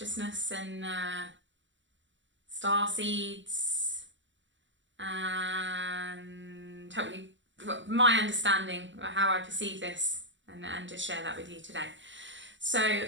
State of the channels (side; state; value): left; late; 0.54 ms